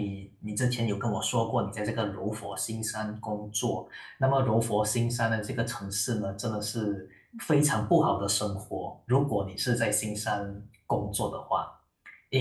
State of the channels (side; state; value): both; identical; correlation 1.00